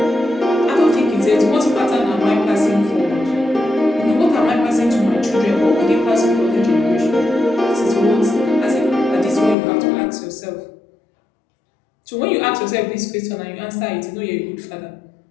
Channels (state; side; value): drops out; right; at 9.6 s